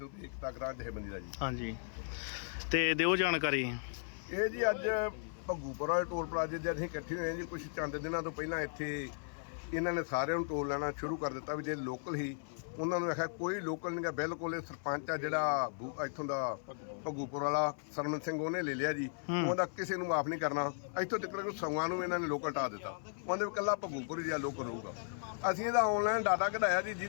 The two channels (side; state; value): right; silent; 54 dB below the other